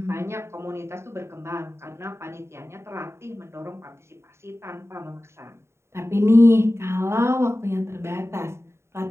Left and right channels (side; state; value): left; late; 0.13 ms